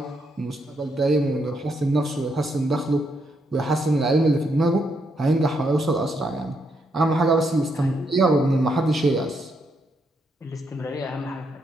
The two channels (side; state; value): both; normal; correlation 0.78